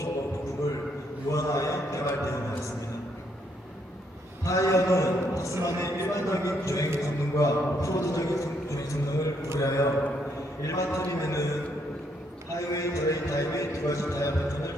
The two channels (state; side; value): normal; both; correlation 0.73